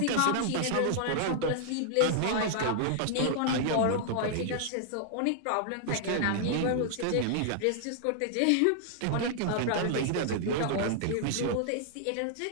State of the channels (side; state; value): both; different; correlation -0.01